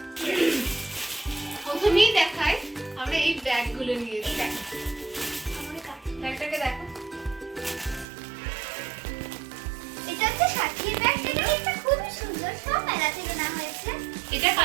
প্রথমেই দেখাই আমরা এই ব্যাগগুলো নিয়েছি। দেখ ব্যাগটাকে দেখো, এটা হচ্ছে সাথীর ব্যাগ। এটা খুবই সুন্দর, সব মেলা থেকে না হয়েছে। এটা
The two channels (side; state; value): left; drops out; at 8.1 s